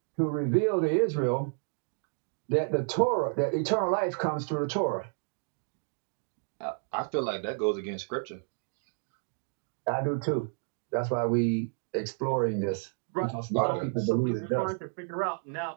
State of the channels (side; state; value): left; silent; 57 dB below the other